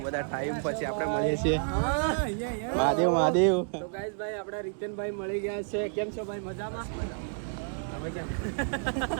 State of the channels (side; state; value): left; silent; digital silence